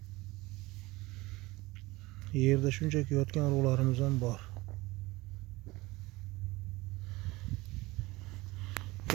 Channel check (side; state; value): left; quieter; 21.0 dB